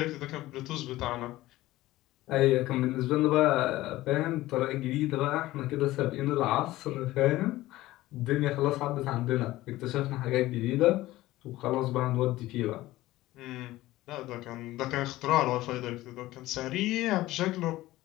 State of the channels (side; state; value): right; quieter; 17.0 dB